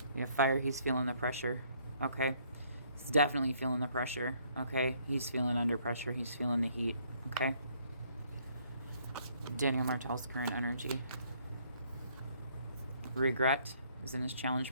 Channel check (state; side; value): inverted; both; correlation -0.65